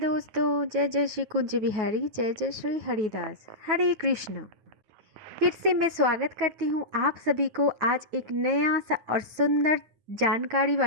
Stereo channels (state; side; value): late; left; 9.4 ms